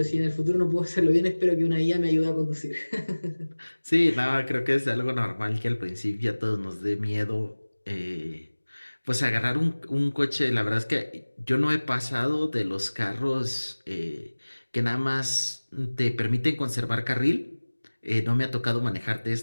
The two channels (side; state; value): both; inverted; correlation -1.00